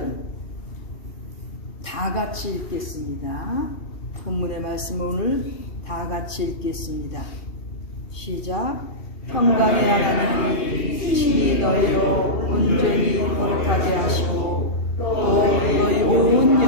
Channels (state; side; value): late; right; 2.4 ms